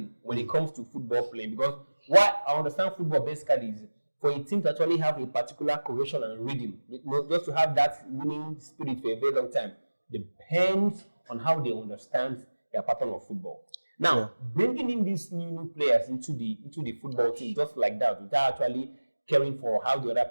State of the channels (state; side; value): inverted; both; correlation -1.00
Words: when it comes to football playing. Because what I understand football basically is for a team to actually have a particular cohesion and rhythm, just to have that winning spirit for a very long time, depends on how they understand their pattern of football. Now, bringing in these new players into the football team just like that, without actually caring for how the other